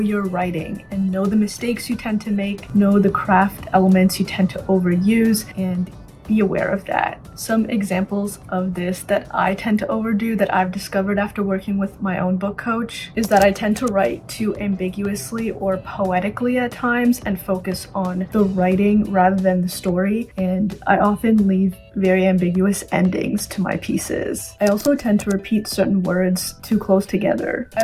writing and know the mistakes you tend to make, know the craft elements you tend to overuse, and be aware of that. Some examples of this that I tend to overdo that I've discovered after working with my own book coach is that I tend to write too ambiguously or poetically at times and focus on the writing rather than the story, and I often leave very ambiguous endings to my pieces. I also tend to repeat certain words too close together. I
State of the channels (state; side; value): identical; both; correlation 1.00